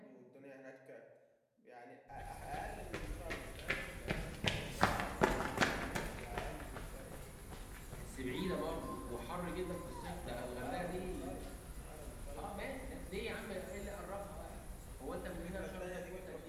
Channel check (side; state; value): both; identical; correlation 1.00